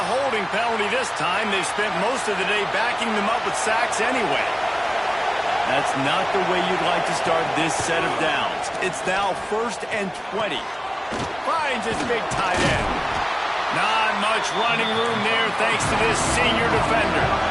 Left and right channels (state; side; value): identical; both; correlation 1.00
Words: holding penalty this time. They've spent most of the day backing them up with sacks anyway. That's not the way you'd like to start this set of downs. It's now 1st and 20. Finds his big tight end. Not much running room there thanks to this senior defender.